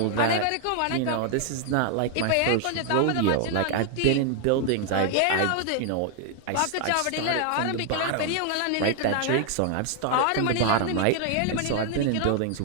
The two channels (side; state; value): both; different; correlation 0.00